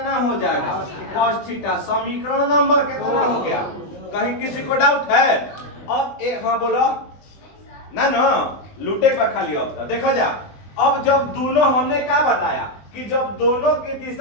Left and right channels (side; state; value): right; late; 20 ms